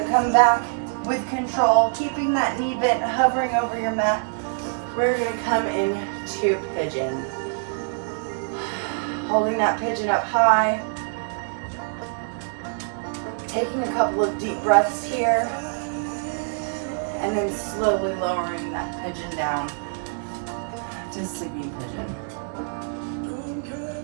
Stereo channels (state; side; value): silent; left; digital silence